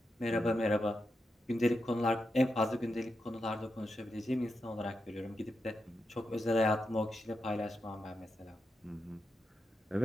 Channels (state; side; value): normal; both; correlation 0.86